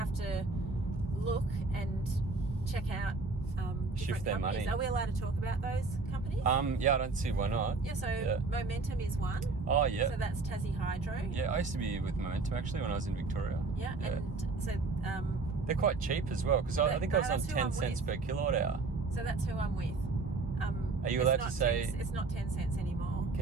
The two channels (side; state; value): left; quieter; 3.9 dB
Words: to look and check out different their companies. money. Are we allowed to talk about those companies? Yeah, I don't see why not. Yeah, so Momentum is one. Oh, yeah. So that's Tassie Hydro. Yeah, I used to be with Momentum actually when I was in Victoria. Yeah. And so... they're quite cheap as well, because I think I was on 10 cents per kilowatt hour. So that's who I'm with. Are you allowed to say... It's not 10 cents anymore.